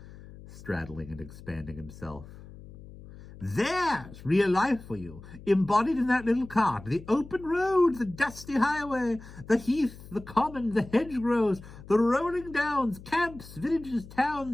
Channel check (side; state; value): left; noise; hum, 17 dB below the sound